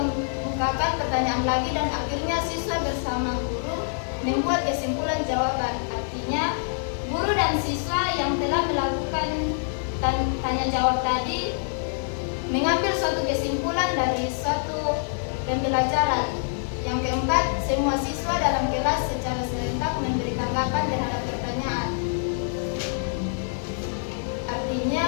pertanyaan lagi dan akhirnya siswa bersama guru membuat kesimpulan jawaban. Artinya, guru dan siswa yang telah melakukan tanya jawab tadi mengambil suatu kesimpulan dari suatu pembelajaran. Yang keempat, semua siswa dalam kelas secara serentak memberi tanggapan terhadap pertanyaan.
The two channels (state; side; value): silent; right; digital silence